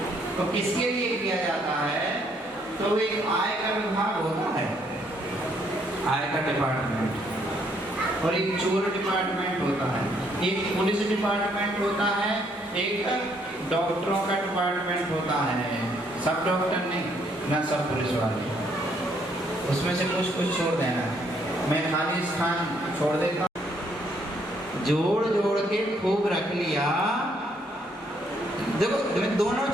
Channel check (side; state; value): both; normal; correlation 0.69